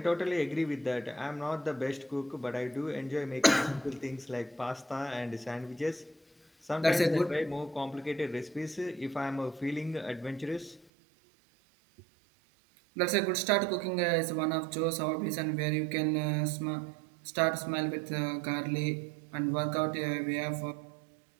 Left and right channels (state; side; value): drops out; left; at 10.9 s